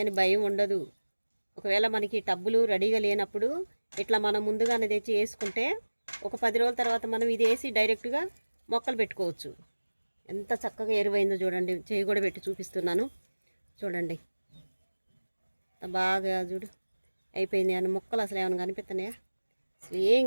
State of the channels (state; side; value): inverted; both; correlation -1.00